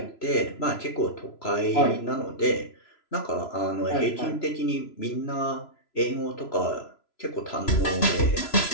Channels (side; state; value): right; late; 3.0 ms